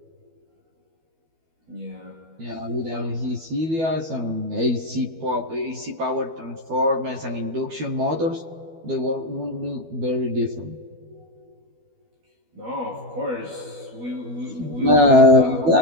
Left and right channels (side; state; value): left; late; 12 ms